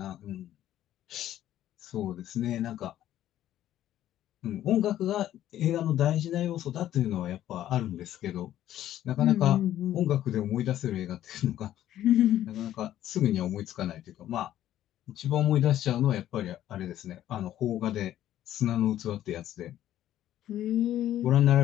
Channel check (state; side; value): quieter; right; 12.4 dB